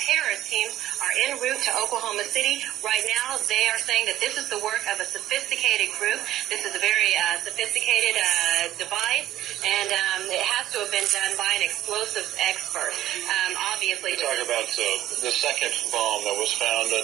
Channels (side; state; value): left; quieter; 13.5 dB